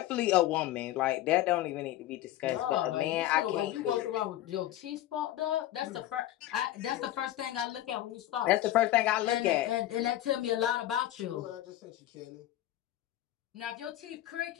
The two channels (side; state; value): right; quieter; 14.0 dB